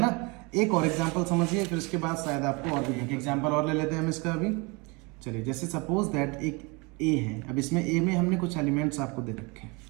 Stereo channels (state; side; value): quieter; left; 28.3 dB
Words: ना। एक और एग्जांपल समझिए, फिर उसके बाद शायद आपको और भी एक एग्जांपल और ले लेते हैं हम इसका अभी। चलिए, जैसे सपोज दैट एक ए है, अब इसमें ए में हमने कुछ एलिमेंट्स आपको दे रखे हैं,